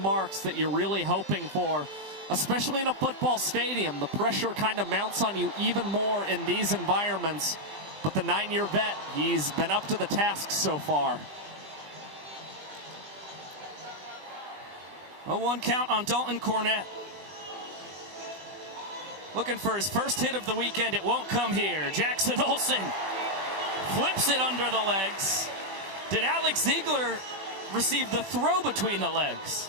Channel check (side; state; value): left; late; 21 ms